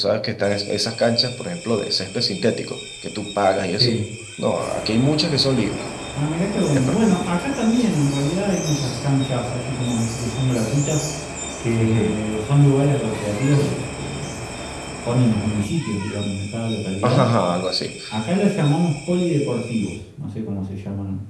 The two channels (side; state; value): both; identical; correlation 1.00